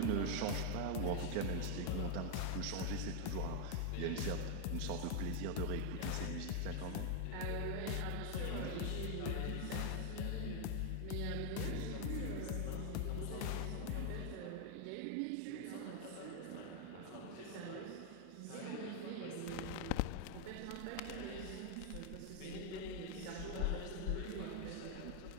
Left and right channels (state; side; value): different; both; correlation 0.00